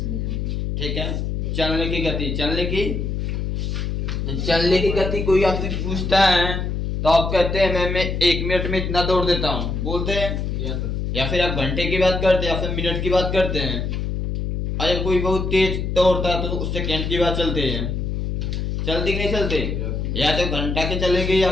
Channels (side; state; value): left; noise; hum, 2 dB below the sound